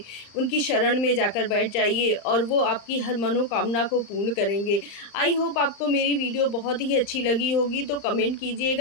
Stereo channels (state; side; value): late; right; 35 ms